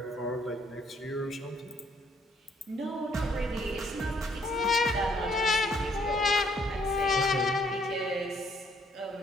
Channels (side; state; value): both; normal; correlation 0.66